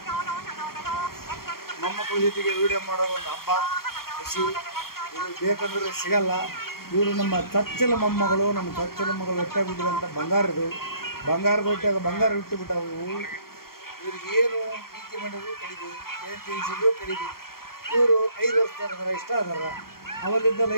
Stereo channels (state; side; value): late; right; 0.93 ms